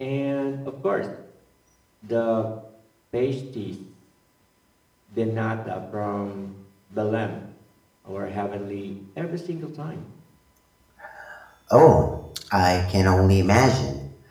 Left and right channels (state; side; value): identical; both; correlation 1.00